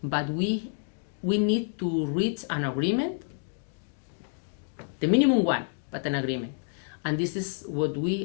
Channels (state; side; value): silent; right; digital silence